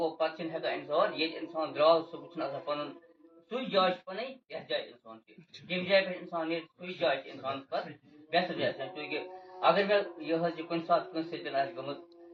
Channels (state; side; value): identical; both; correlation 1.00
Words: پتہٕ چھِنہٕ ہٮ۪کان اِنسان ییٚتہِ اِنسان درٛاو سُہ چھُنہٕ آسان پنُن سُے جاے چھِ پنٕنۍ یتھ جایہِ اِنسان چھِ ییٚمہِ جایہِ پٮ۪ٹھ اِنسان نیرِ سُے جاے چھِ اِنسانس پتہٕ بہتر جاے چوٗنٛکہِ اگر مےٚ یہِ حظ یہِ کُنہِ ساتہٕ کٲنٛسہِ سۭتۍ آسہِ گٔمٕژ